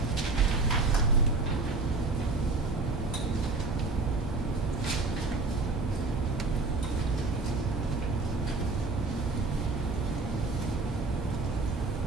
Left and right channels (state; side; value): quieter; left; 3.7 dB